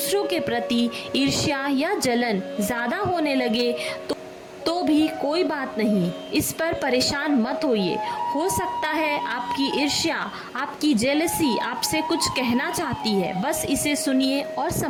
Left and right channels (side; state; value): both; identical; correlation 1.00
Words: के प्रति ईर्ष्या या जलन ज़्यादा होने लगे तो भी कोई बात नहीं, इस पर परेशान मत होइए। हो सकता है आपकी ईर्ष्या, आपकी जेलसी आपसे कुछ कहना चाहती है, बस इसे सुनिए और